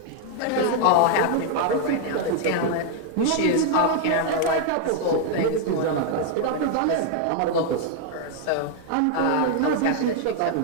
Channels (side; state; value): both; different; correlation 0.00